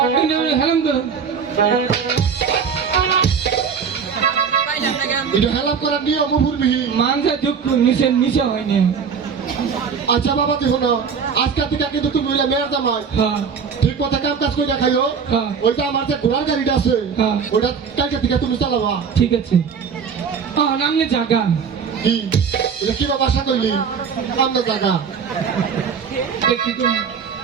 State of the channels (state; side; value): quieter; left; 6.3 dB